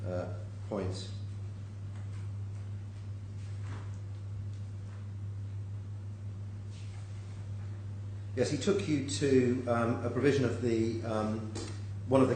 points. Yes, he took you to a provision of the one of the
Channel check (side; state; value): both; identical; correlation 1.00